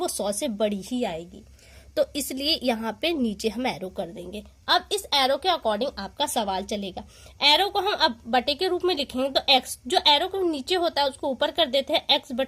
100 से बड़ी ही आएगी, तो इसलिए यहाँ पे नीचे हम एरो कर देंगे। अब इस एरो के अकॉर्डिंग आपका सवाल चलेगा। एरो को हम अब बटे के रूप में लिखेंगे, तो x जो एरो को नीचे होता है उसको ऊपर कर देते हैं, x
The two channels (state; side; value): identical; both; correlation 1.00